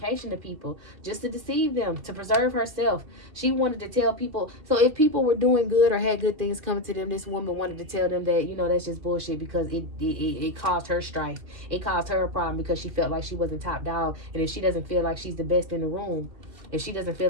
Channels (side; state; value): left; late; 2.5 ms